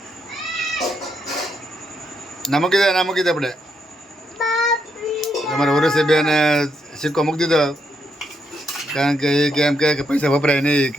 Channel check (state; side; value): normal; both; correlation 0.78